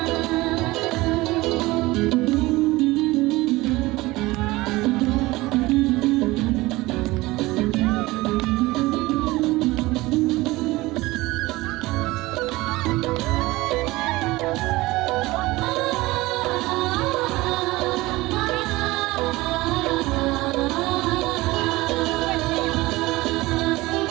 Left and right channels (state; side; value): quieter; left; 20.1 dB